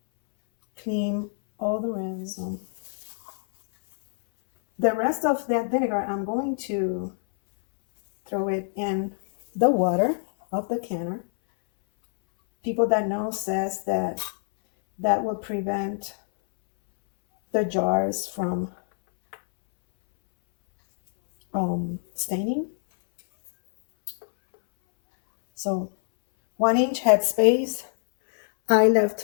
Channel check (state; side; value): silent; right; 62 dB below the other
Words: clean all the rims. The rest of that vinegar, I'm going to throw it in the water of the canner. People that know says that will prevent the jars from staining. So 1 inch headspace. I